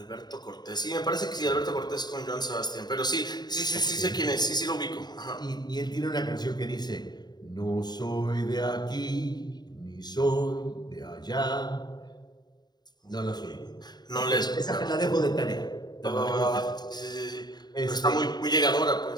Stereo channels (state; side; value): late; right; 0.20 ms